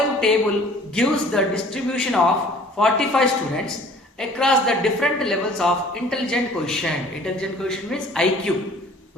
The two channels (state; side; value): normal; both; correlation 0.51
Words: table gives the distribution of 45 students across the different levels of intelligent quotient. Intelligent quotient means IQ.